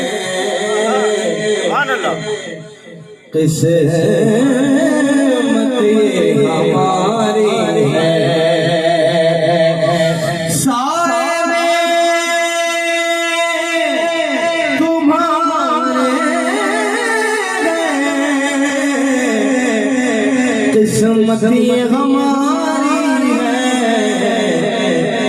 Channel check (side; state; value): both; identical; correlation 1.00